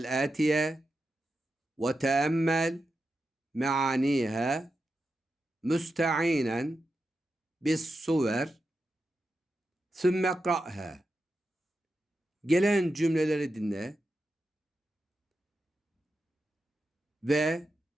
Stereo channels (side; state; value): both; normal; correlation 0.89